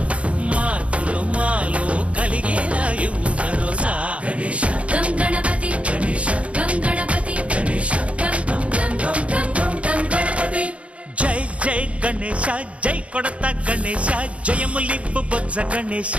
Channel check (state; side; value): late; left; 0.063 ms